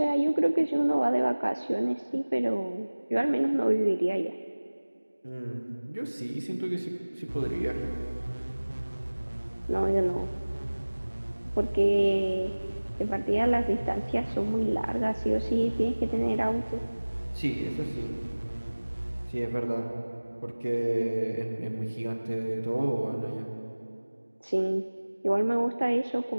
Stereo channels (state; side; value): inverted; both; correlation -1.00